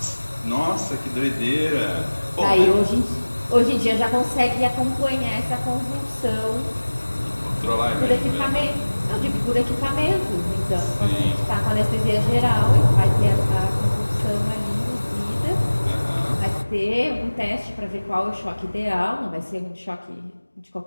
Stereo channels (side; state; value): both; inverted; correlation -1.00